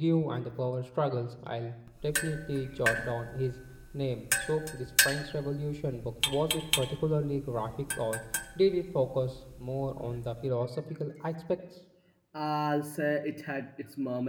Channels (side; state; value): both; identical; correlation 1.00